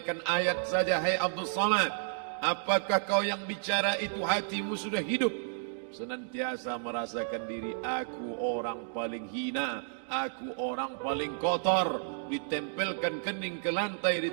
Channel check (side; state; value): left; silent; digital silence